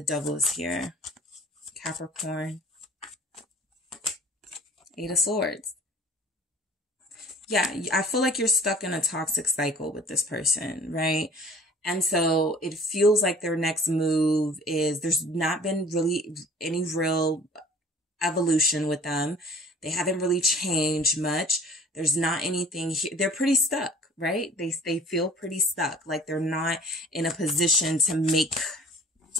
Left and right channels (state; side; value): normal; both; correlation 0.49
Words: Devil is here. Capricorn. Eight of Swords. Yeah, I feel like you're stuck in a toxic cycle with this person, right? And so it feels like their next move is, there's not been really any real evolution with them. They haven't really changed much. There's not anything here. They're pretty stuck, right? They feel pretty stuck. Like they're not in a position to make,